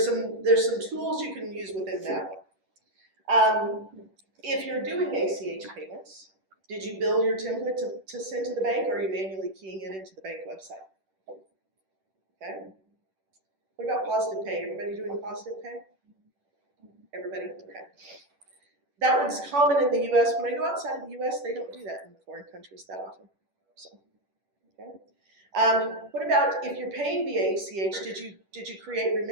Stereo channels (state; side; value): late; left; 10 ms